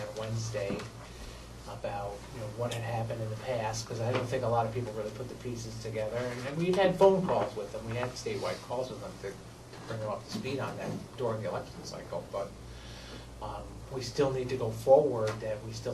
Wednesday about, you know, what had happened in the past, because I don't think a lot of people really put the pieces together. And we've had phone calls with them, we had statewide calls with them to bring them up to speed on that during the election cycle, but we still need to go forward, that we still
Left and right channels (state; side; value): identical; both; correlation 1.00